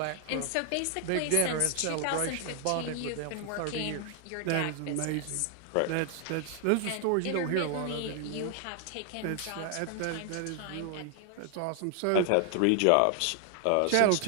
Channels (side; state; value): both; different; correlation 0.00